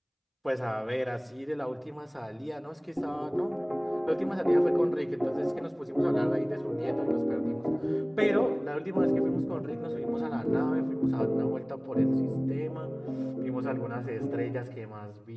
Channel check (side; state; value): both; identical; correlation 1.00